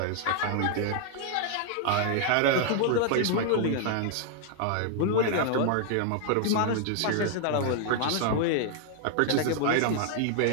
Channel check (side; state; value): both; different; correlation 0.00